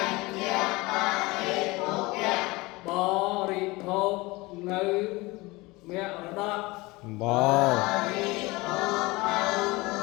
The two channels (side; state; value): right; quieter; 22.6 dB